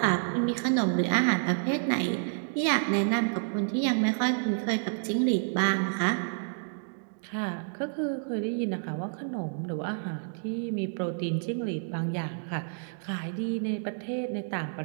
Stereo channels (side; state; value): left; silent; digital silence